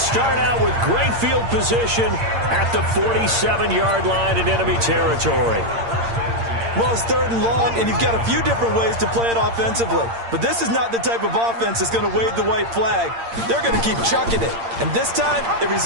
out with great field position at the 47-yard line in enemy territory. Well, it's 3rd and long, and you've got a few different ways to play it offensively. But this is not the type of offense that's going to wave the white flag. They're going to keep chucking it. And this time, it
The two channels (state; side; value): late; left; 8.7 ms